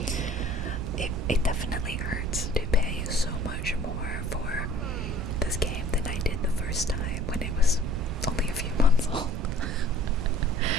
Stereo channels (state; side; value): noise; right; rumble, 5 dB below the sound